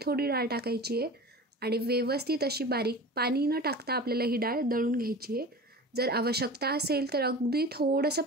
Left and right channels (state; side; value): normal; both; correlation 0.35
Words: थोडी डाळ टाकायची आहे आणि व्यवस्थित अशी बारीक पाणी न टाकता आपल्याला ही डाळ दळून घ्यायची आहे. जर आवश्यकता असेल तर अगदी थोडंसं